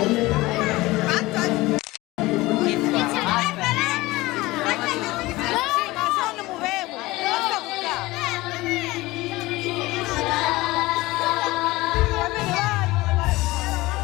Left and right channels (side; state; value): right; quieter; 19.8 dB